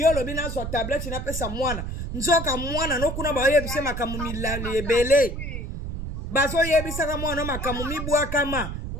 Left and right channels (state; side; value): noise; right; rumble, 5 dB below the sound